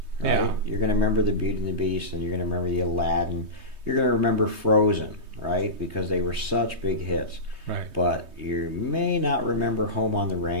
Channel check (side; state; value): left; late; 3.2 ms